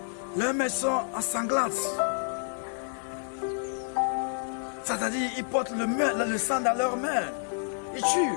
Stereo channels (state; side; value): silent; right; digital silence